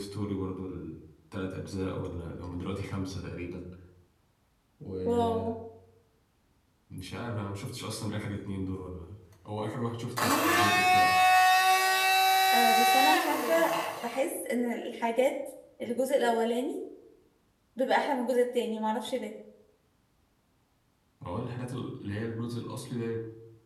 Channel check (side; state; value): both; identical; correlation 1.00